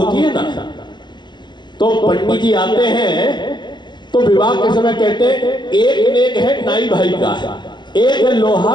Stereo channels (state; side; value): late; right; 0.21 ms